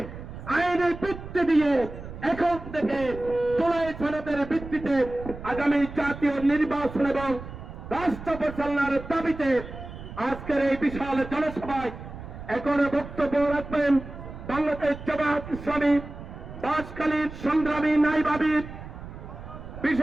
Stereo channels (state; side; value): noise; right; rumble, 12 dB below the sound